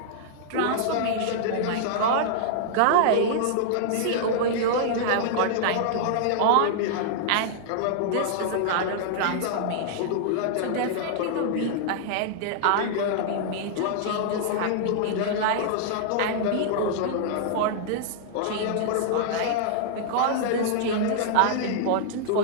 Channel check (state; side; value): different; both; correlation -0.01